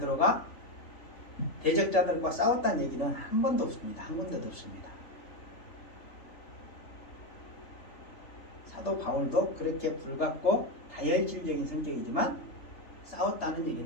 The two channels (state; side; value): late; right; 3.4 ms